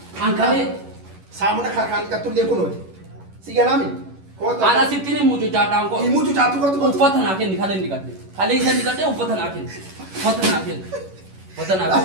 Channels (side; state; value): left; late; 11 ms